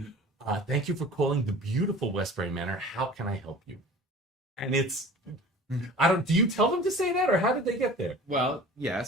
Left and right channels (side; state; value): both; normal; correlation 0.42